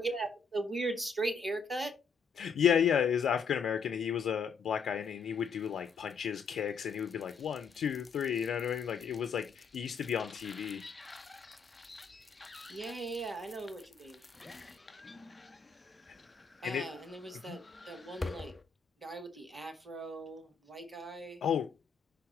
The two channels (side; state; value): right; quieter; 5.5 dB